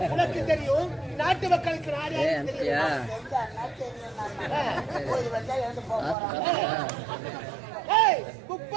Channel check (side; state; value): left; drops out; at 6.2 s